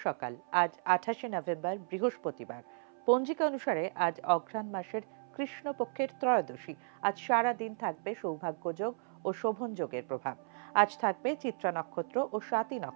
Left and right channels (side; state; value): left; silent; 55 dB below the other